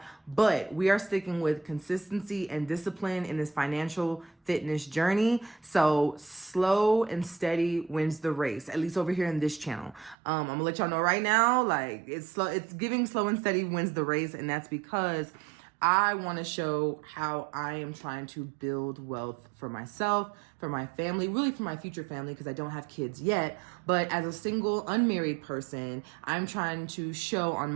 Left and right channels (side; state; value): left; drops out; at 10.2 s